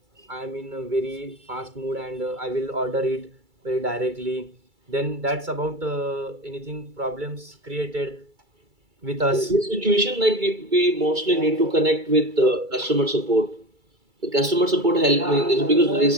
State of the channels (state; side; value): late; left; 2.3 ms